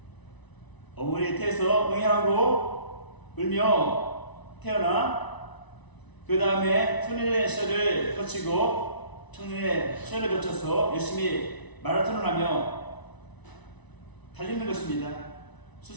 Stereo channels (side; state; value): right; late; 1.0 ms